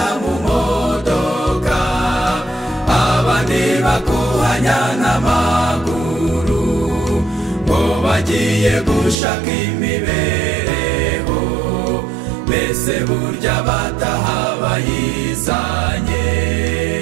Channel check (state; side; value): drops out; left; at 9.2 s